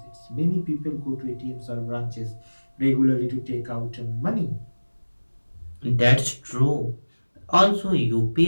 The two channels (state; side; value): inverted; both; correlation -1.00